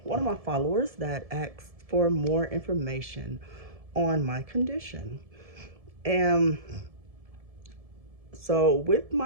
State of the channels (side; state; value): left; late; 1.7 ms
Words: one of my followers that asked for more information on my condition. And so with